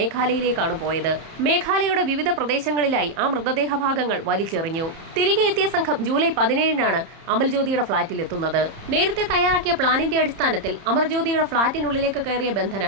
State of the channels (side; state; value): left; late; 31 ms